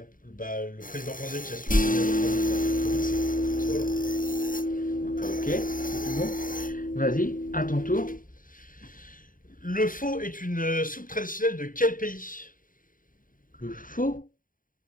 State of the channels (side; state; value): right; late; 0.40 ms